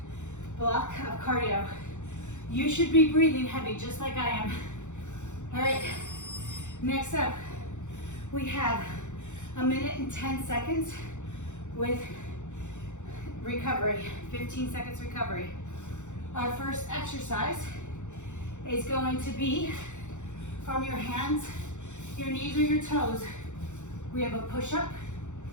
block of cardio. You should be breathing heavy just like I am. All right. Next up, we have 1 minute and 10 seconds with recovery, 15 seconds recovery. Our first exercise is going to be from your hands, your knees, or your toes. We have a push-up,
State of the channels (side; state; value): right; late; 0.84 ms